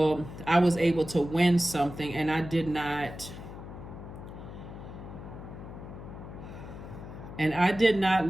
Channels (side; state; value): left; noise; hum, 12 dB below the sound